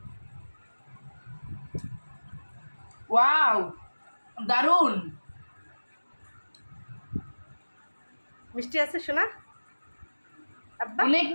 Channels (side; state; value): both; inverted; correlation -1.00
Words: ওয়াও, দারুন। মিষ্টি আছে শোনা? আব্বা অনেক